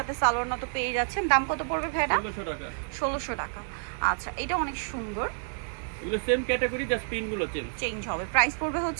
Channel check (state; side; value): silent; left; 59 dB below the other